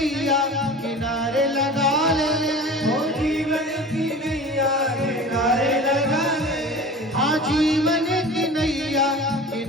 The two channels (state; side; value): normal; both; correlation 0.38